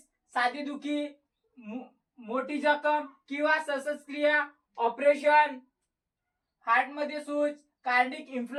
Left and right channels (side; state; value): both; identical; correlation 1.00